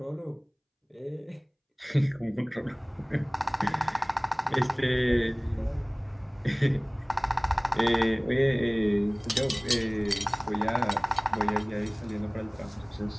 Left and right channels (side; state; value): both; identical; correlation 1.00